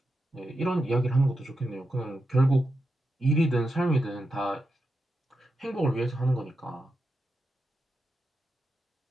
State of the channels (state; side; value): normal; both; correlation 0.87